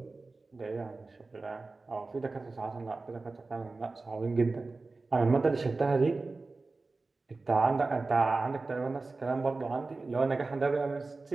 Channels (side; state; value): left; quieter; 3.6 dB